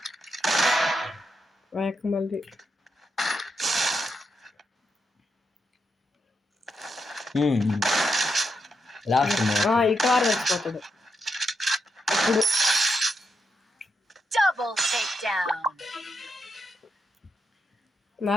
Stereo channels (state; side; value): normal; both; correlation 0.84